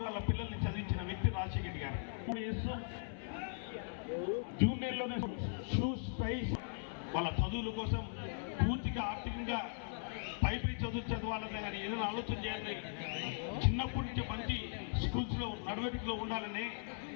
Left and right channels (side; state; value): right; silent; 52 dB below the other